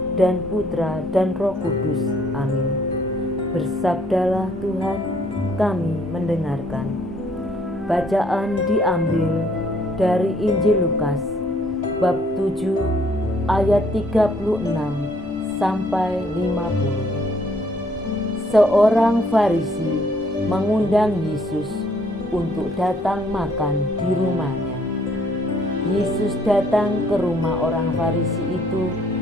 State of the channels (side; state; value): both; normal; correlation 0.65